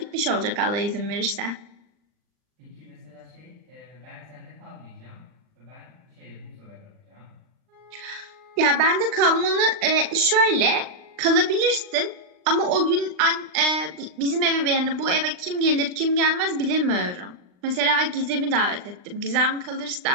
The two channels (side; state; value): left; late; 39 ms